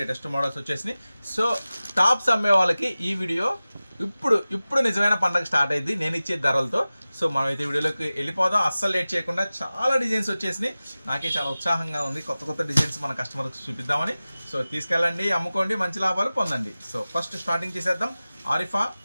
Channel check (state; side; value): inverted; both; correlation -0.97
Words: లేటెస్ట్ మోడల్స్ వచ్చేసినాయి. సో టాప్స్ అమ్మే వాళ్ళకి ఈ వీడియో ఇప్పుడు నిజమైన పండగ స్టార్ట్ అయింది నేను ఇచ్చే ధరలతో. సో మనమైతే వీడియోలోకి వెళ్ళిపోదాం, అస్సలు లేట్ చేయకుండా. చాలా డిజైన్స్ వచ్చేసినాయి, నాకే చాలా ఉత్సాహంగా ఉంది కొత్త డిజైన్స్ మన కస్టమర్కి చూపిద్దామని. సో తీసుకెళ్ళండి, అమ్ముకోండి, మంచి లాభాలు పొందండి. సో ఫస్ట్ స్టార్టింగ్ చేసేద్దాం. ఆరిఫా